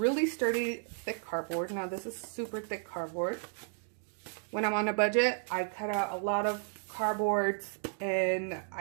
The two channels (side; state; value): left; silent; 56 dB below the other